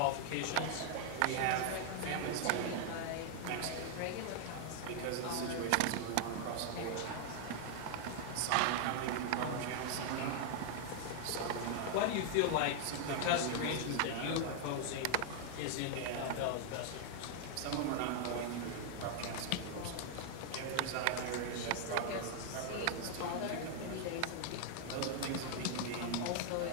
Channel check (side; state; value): both; different; correlation 0.00